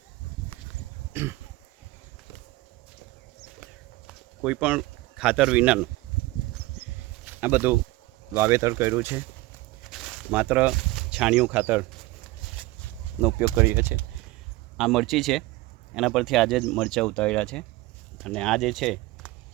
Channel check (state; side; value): quieter; left; 19.7 dB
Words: કોઈ પણ ખાતર વિનાનું આ બધું વાવેતર કર્યું છે. માત્ર છાણિયું ખાતરનો ઉપયોગ કરીએ છીએ. આ મરચી છે, એના પરથી આજે જ મરચાં ઉતાર્યા છે અને આ જે છે